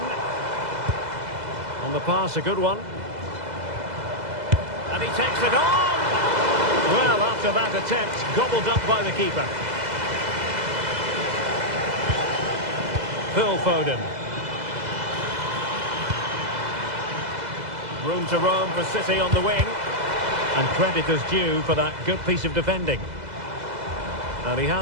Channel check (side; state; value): left; late; 2.0 ms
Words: On the pass, a good one. And he takes it on. Well, after that attempt, gobbled up by the keeper. Phil Foden. Room to roam for City on the wing. And credit is due for that good piece of defending. And he